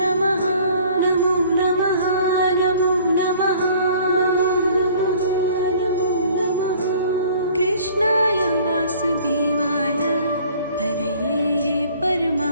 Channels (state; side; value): inverted; both; correlation -0.53